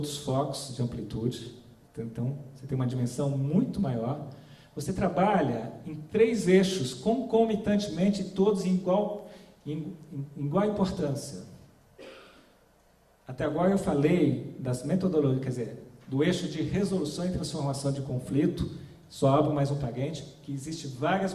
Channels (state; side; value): identical; both; correlation 1.00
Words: focos de amplitude, então você tem uma dimensão muito maior. Você trabalha em 3 eixos concomitantemente, todos em igual importância. Até agora eu falei das metodologias, quer dizer, do eixo de resolução e transformação de conflito Só abro mais um parênteses, que existem várias